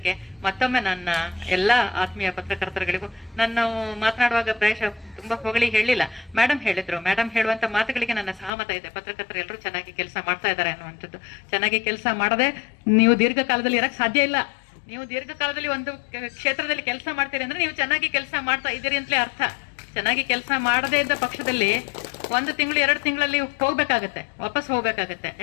ಮತ್ತೊಮ್ಮೆ ನನ್ನ ಎಲ್ಲಾ ಆತ್ಮೀಯ ಪತ್ರಕರ್ತರುಗಳಿಗೂ ನಾನು ಮಾತನಾಡುವಾಗ ಪ್ರಾಯಶಃ ತುಂಬಾ ಹೊಗಳಿ ಹೇಳಿಲ್ಲ. ಮೇಡಮ್ ಹೇಳಿದ್ರು. ಮೇಡಮ್ ಹೇಳುವಂತ ಮಾತುಗಳಿಗೆ ನನ್ನ ಸಹಮತ ಇದೆ. ಪತ್ರಕರ್ತರು ಎಲ್ಲರೂ ಚೆನ್ನಾಗಿ ಕೆಲಸ ಮಾಡ್ತಾ ಇದ್ದಾರೆ ಅನ್ನುವಂಥದ್ದು. ಚೆನ್ನಾಗಿ ಕೆಲಸ ಮಾಡದೆ ನೀವು ದೀರ್ಘಕಾಲದಲ್ಲಿ ಇರಕ್ ಸಾಧ್ಯ ಇಲ್ಲ. ನೀವು ದೀರ್ಘಕಾಲದಲ್ಲಿ ಒಂದು ಕ್ಷೇತ್ರದಲ್ಲಿ ಕೆಲಸ ಮಾಡ್ತೀರಿ ಅಂದ್ರೆ ನೀವು ಚೆನ್ನಾಗಿ ಕೆಲಸ ಮಾಡ್ತಾ ಇದ್ದೀರಿ ಅಂತಲೇ ಅರ್ಥ. ಚೆನ್ನಾಗಿ ಕೆಲಸ ಮಾಡದೇ ಇದ್ದ ಪಕ್ಷದಲ್ಲಿ 1 ತಿಂಗಳು 2 ತಿಂಗಳಲ್ಲಿ ವಾಪಸ್ ಹೋಗ್ಬೇಕಾಗತ್ತೆ.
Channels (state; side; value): drops out; right; at 8.5 s